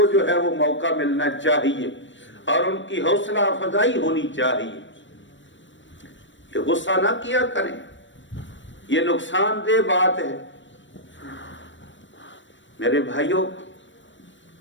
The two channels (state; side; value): late; right; 0.54 ms